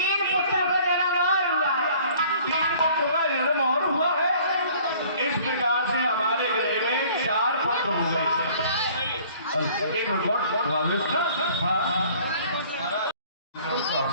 एक रिकॉर्ड वाविष्ट।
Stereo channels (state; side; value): inverted; both; correlation -0.52